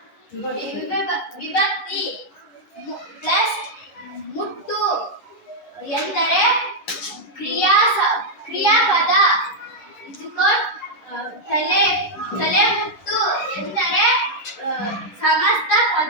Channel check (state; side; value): late; right; 9.7 ms